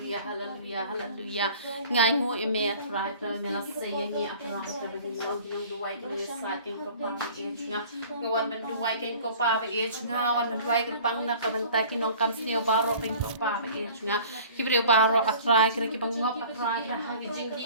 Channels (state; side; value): inverted; both; correlation -0.46